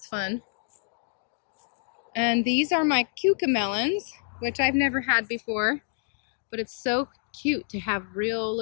fun. And these are my cucamelons, which I've never had before, but it's so cute to have real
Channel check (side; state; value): right; silent; digital silence